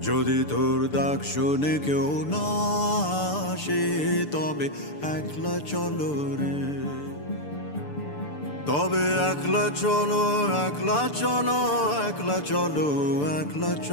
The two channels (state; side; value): late; right; 6.8 ms